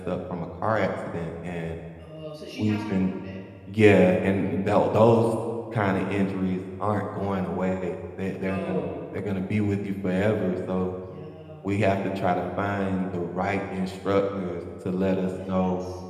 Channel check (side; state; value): both; identical; correlation 1.00